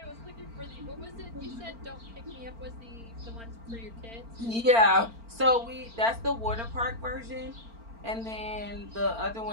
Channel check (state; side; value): late; left; 4.4 ms